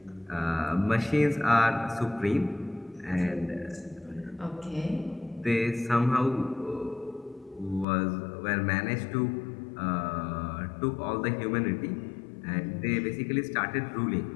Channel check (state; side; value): drops out; right; at 7.9 s